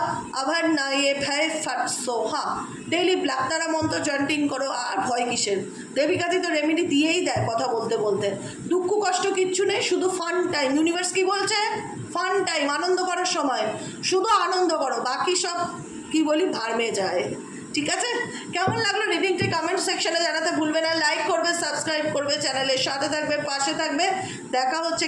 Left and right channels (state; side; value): identical; both; correlation 1.00